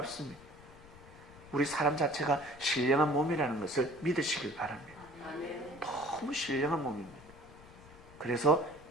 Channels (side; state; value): left; noise; rumble, 21 dB below the sound